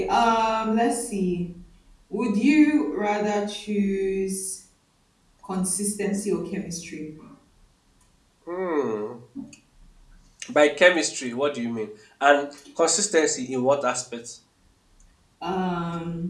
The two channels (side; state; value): both; identical; correlation 1.00